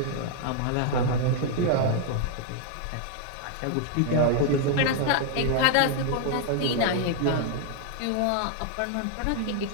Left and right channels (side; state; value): both; different; correlation 0.00